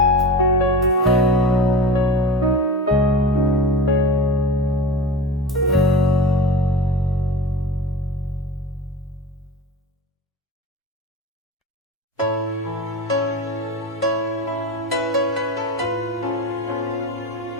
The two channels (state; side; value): normal; both; correlation 0.31